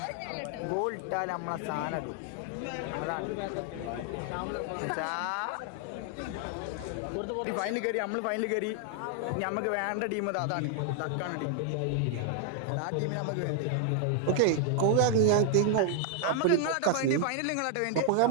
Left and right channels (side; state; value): both; different; correlation 0.00